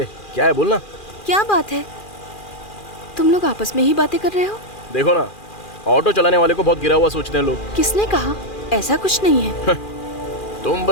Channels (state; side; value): late; right; 2.4 ms